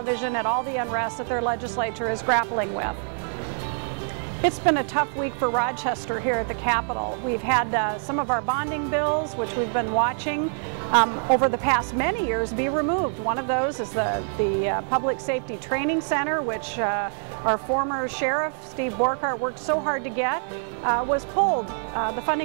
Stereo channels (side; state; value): left; silent; 57 dB below the other